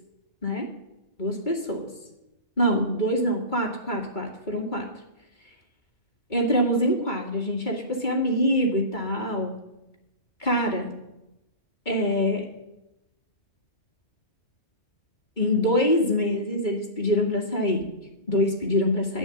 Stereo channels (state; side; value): late; right; 2.3 ms